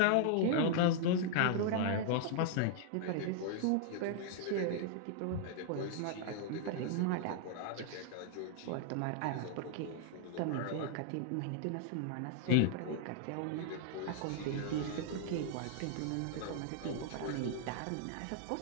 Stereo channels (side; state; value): both; different; correlation 0.00